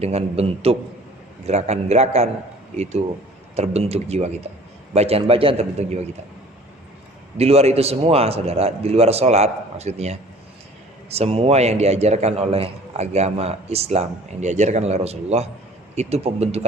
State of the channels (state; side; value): normal; both; correlation 0.49